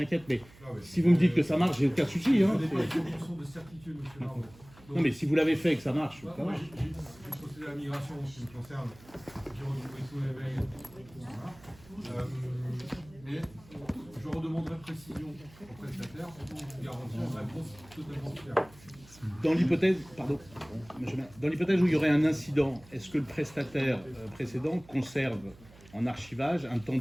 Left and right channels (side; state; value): right; noise; hum, 23 dB below the sound